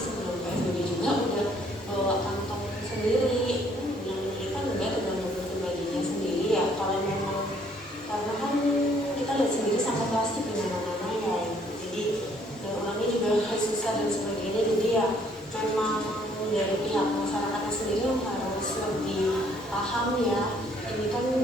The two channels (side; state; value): both; normal; correlation 0.64